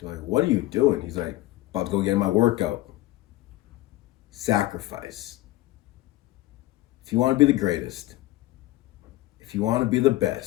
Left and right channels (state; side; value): quieter; right; 17.0 dB